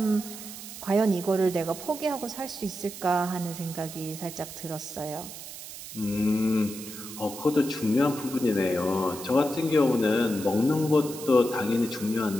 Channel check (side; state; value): right; noise; hiss, 12 dB below the sound